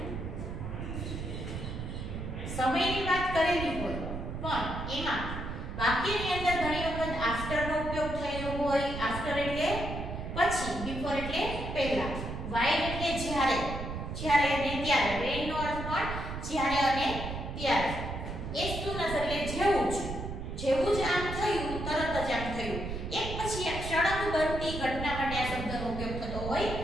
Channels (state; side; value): noise; right; rumble, 6 dB below the sound